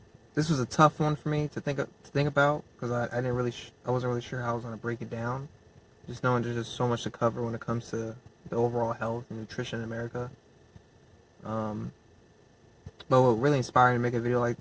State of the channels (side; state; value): both; identical; correlation 1.00